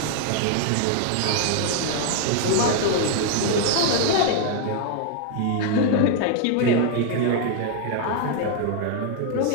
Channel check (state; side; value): different; both; correlation 0.00